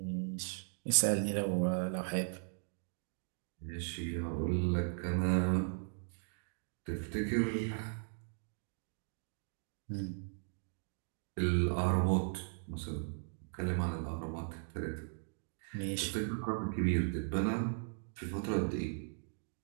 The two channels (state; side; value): silent; left; digital silence